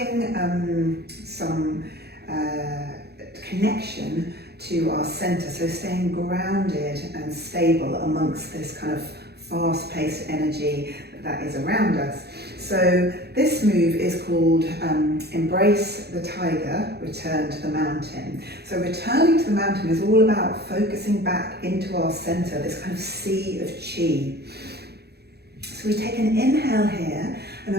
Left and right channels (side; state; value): left; late; 0.47 ms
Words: some connection to our centre, so staying grounded and stable amongst this kind of fast-paced energy that is around us. So this move is called Embrace the Tiger, Return to the Mountain. So returning to the mountain is all about focusing back into our centre, this kind of sea of chi. So we take an inhale here, and